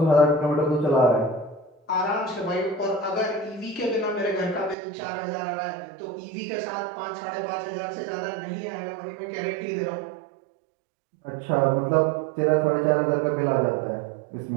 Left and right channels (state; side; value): drops out; left; at 4.8 s